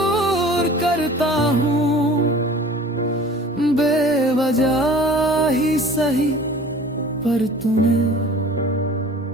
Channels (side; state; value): both; normal; correlation 0.45